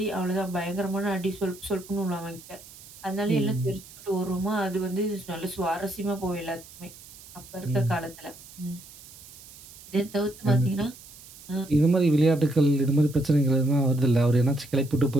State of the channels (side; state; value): right; noise; hiss, 19 dB below the sound